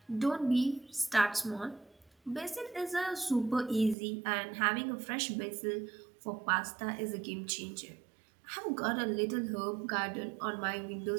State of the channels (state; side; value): drops out; left; at 4.0 s